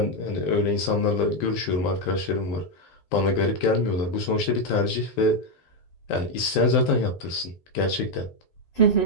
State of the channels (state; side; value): late; right; 12 ms